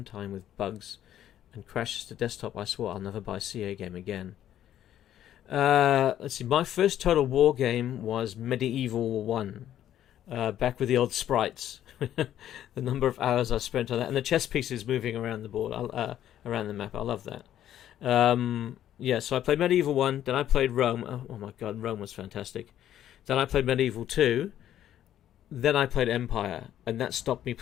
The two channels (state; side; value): quieter; right; 11.4 dB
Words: time with bugs and crashes to desktop. I swore I'll never buy a CA game again. Let's see. My first Total War game was Medieval 1. Back with the old sprites. The number of hours I spent on that. And the chess pieces moving around the board, around the map. I love that. Yeah, so I played Medieval 1. Then I played Rome. Oh my god, Rome was fantastic. Then I played Medieval 2. Then I played Empire. And that stopped me